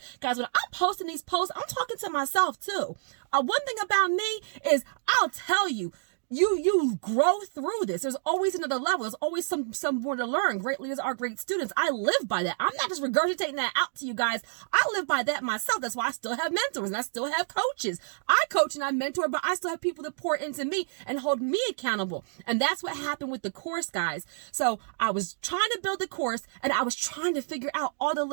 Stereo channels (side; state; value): left; silent; digital silence